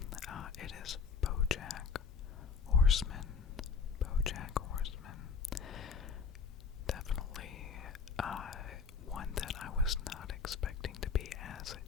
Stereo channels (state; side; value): quieter; right; 5.7 dB